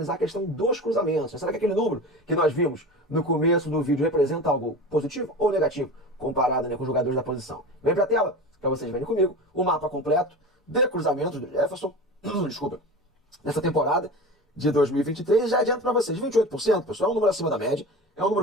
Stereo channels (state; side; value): normal; both; correlation 0.31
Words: a questão dos cruzamentos. Será que aquele número que nós vimos no começo do vídeo representa algo positivo ou negativo, comparado, né, com os jogadores da posição? Vem para a tela, para vocês verem comigo, o mapa completo de cruzamentos do Jefferson, desculpa, nessa temporada de 2023. Já adianto para vocês, 28%, pessoal, é um número acima da média, é um